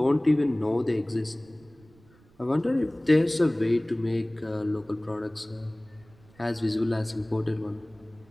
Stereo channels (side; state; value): right; noise; rumble, 28 dB below the sound